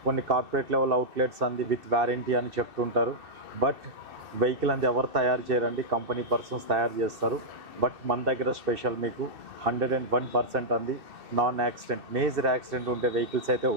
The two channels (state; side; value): late; left; 2.6 ms